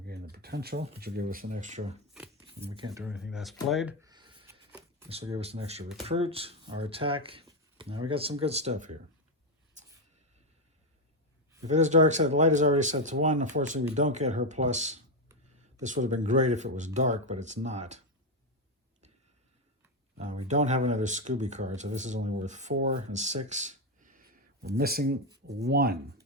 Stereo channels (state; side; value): normal; both; correlation 0.07